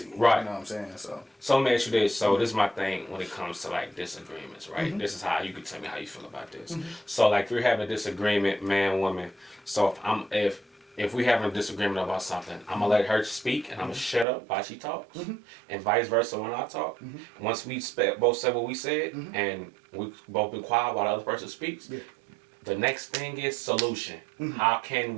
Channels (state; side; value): drops out; left; at 14.2 s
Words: Right. You know what I'm saying? So let me ask you this. So this is my thing when it comes to like disagreements, right? This is how you can tell me how you feel about this. So like if we're having a disagreement, man, woman. So if we having a disagreement about something, I'm gonna let her speak and I'm gonna shut up while she talks, and vice versa when I talk. Once we both said what we said and we both been quiet while the other person speaks, the next thing is solution. How can